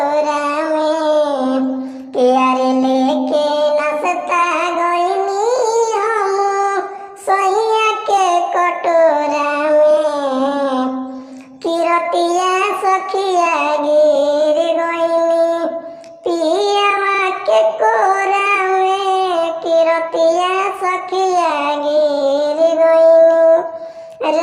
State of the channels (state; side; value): identical; both; correlation 1.00